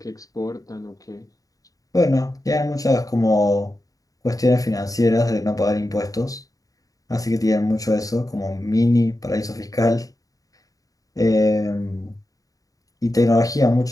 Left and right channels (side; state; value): right; late; 0.17 ms